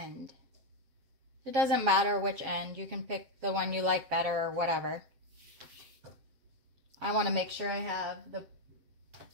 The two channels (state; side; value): late; left; 7.5 ms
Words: It doesn't matter which end. You can pick the one you like better or whatever. I want to make sure I have the